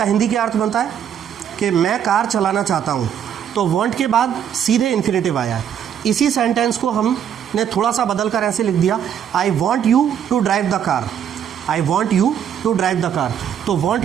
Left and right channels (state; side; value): quieter; left; 9.0 dB